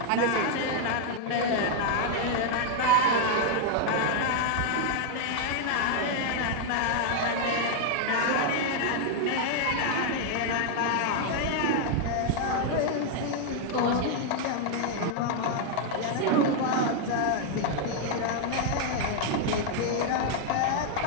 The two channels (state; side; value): different; both; correlation 0.00